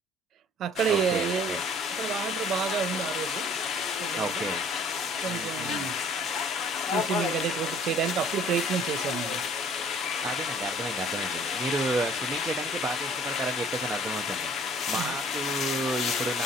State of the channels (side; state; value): both; normal; correlation 0.54